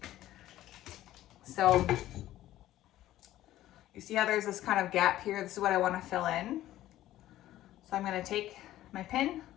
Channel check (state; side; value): quieter; right; 14.1 dB